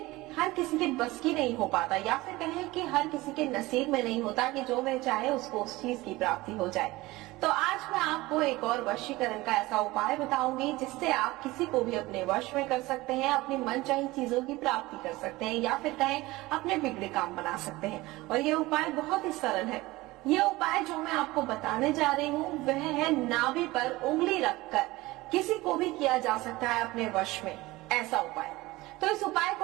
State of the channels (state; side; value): quieter; left; 19.9 dB